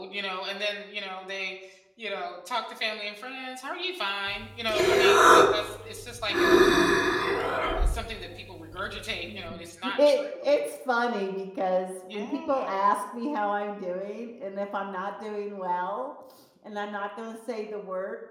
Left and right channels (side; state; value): both; identical; correlation 1.00